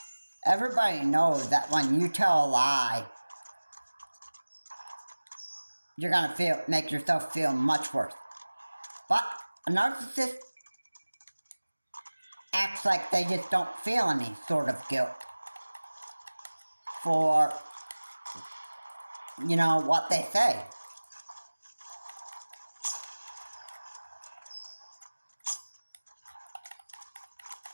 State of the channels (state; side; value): inverted; both; correlation -1.00